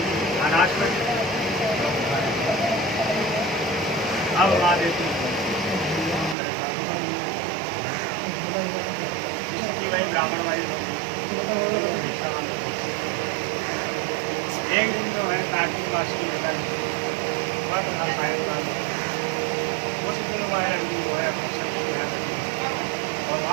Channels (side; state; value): left; drops out; at 6.4 s